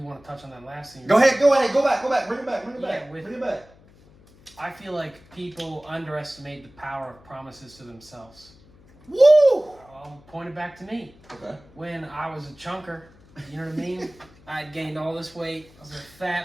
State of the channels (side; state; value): left; noise; hum, 26 dB below the sound